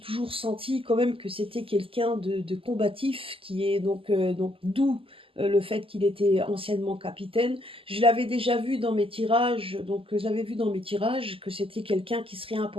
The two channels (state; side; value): late; left; 0.26 ms